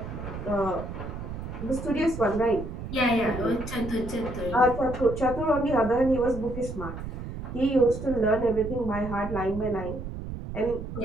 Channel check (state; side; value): noise; right; rumble, 8 dB below the sound